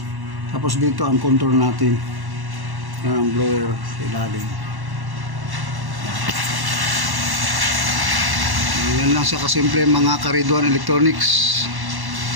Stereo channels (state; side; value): late; left; 1.1 ms